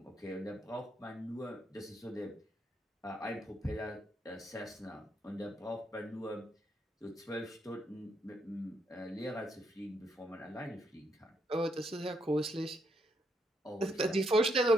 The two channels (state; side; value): normal; both; correlation 0.77